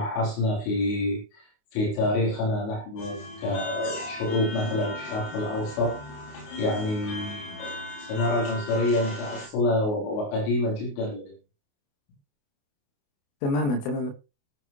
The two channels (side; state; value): right; late; 28 ms